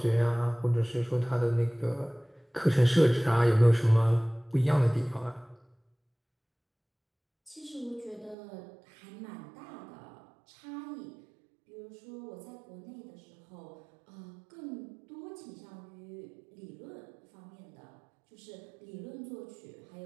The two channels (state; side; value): drops out; left; at 8.3 s